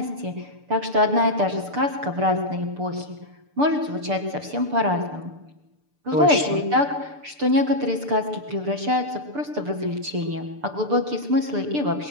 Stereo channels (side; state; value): left; late; 6.8 ms